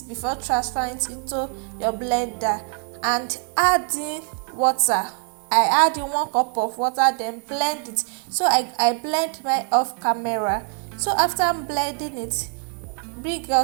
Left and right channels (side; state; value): left; quieter; 39.8 dB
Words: before transferring it into your blender, and add in water. I add in 1 cup of water, then blend it. So I blend mine off camera. So after blending it, bring